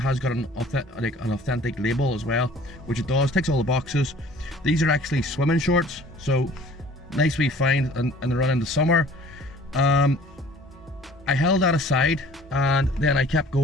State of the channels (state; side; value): normal; both; correlation 0.50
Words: got an authentic label as well, which it does. Ticks all the boxes. These are actually swimming shorts, so nice wee find and they run into summer. I held that aside and then I kept